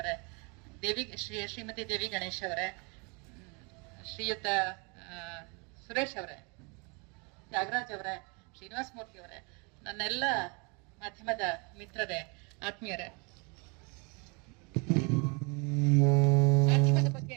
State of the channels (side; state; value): left; quieter; 31.9 dB